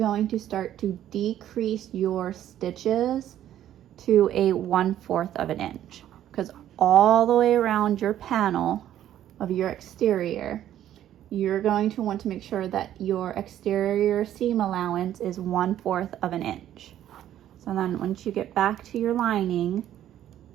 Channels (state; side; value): quieter; left; 11.7 dB